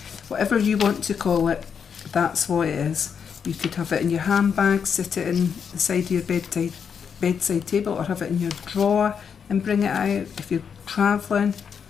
whatever you want to call it, that's what it is. You could have it in your handbag, sit it in the side of your bedside table, or have it in your drawer and bring it out. If you're travelling,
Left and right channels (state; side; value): quieter; right; 6.9 dB